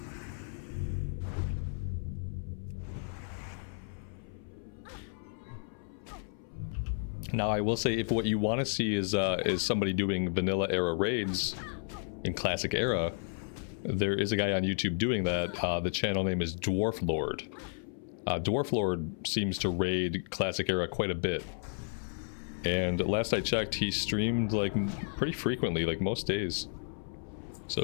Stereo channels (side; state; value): right; silent; 56 dB below the other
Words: Now, I will say, if what you want to see is somebody doing vanilla era raids in Classic Era, there is a guy on YouTube doing that. The channel name is Dwarf Lord. Dwarf Lord seems to raid Classic Era quite a bit. And last I checked, he streamed like pretty frequently, like most days. So